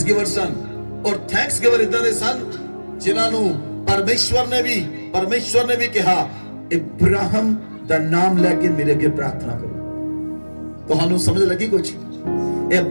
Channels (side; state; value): both; inverted; correlation -1.00